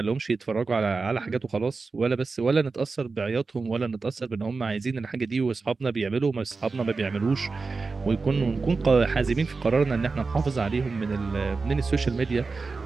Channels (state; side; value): quieter; left; 4.2 dB